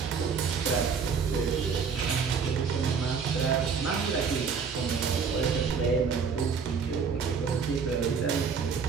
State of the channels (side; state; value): left; quieter; 5.9 dB